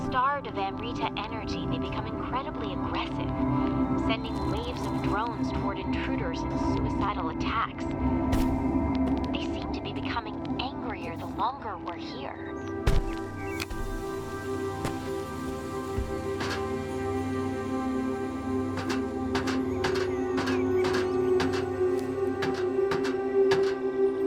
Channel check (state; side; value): identical; both; correlation 1.00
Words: of Amrita energy, they become incredibly aggressive, sending waves of drones toward intruders in suicidal attacks. They seem to be becoming angrier the longer we're here.